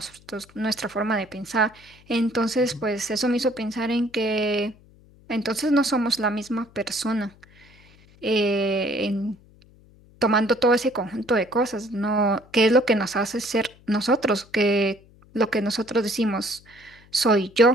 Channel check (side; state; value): left; noise; hum, 27 dB below the sound